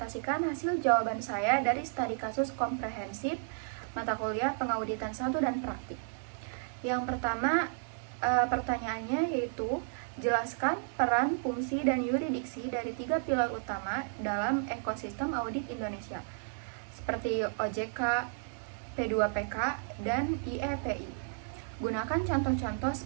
hasil jawaban saya dari studi kasus komprehensif mata kuliah pengauditan 1 dan praktik. Yang pertama, pertanyaannya yaitu jelaskan peran, fungsi, dan yurisdiksi dari 3 pilar utama dalam ekosistem audit Indonesia, seperti OJK, P2PK, dan IEPI. Gunakan contoh-contoh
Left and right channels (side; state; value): left; silent; digital silence